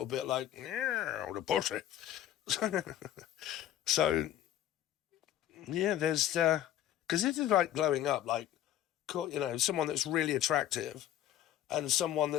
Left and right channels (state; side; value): quieter; right; 11.8 dB